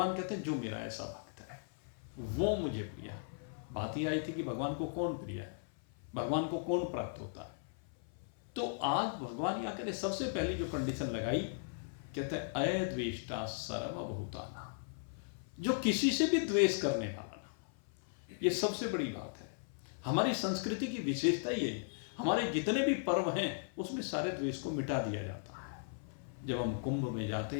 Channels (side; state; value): right; silent; 53 dB below the other